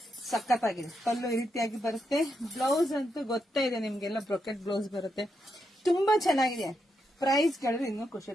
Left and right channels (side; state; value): both; normal; correlation 0.82